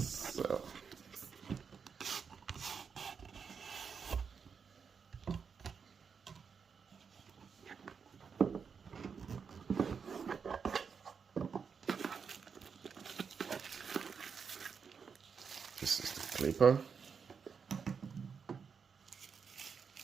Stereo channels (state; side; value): quieter; left; 6.1 dB